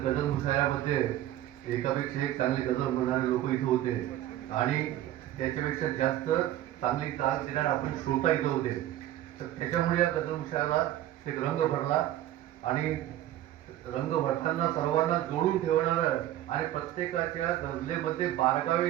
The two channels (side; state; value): left; quieter; 13.2 dB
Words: गझल मुशायरामध्ये एकापेक्षा एक चांगले गझल म्हणणारे लोक इथे होते आणि त्याच्यापेक्षा जास्त चांगली ताल देणारे आपण श्रोता इथं होते. तर त्याच्यामुळे या गझल मुशायराला एक रंग भरला आणि रंग भरताना सर्वांना जोडून ठेवणारं आणि प्रत्येकाच्या गझलेमध्ये